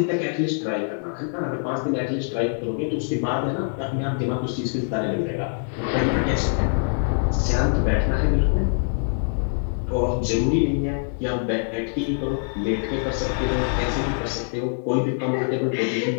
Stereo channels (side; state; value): right; silent; digital silence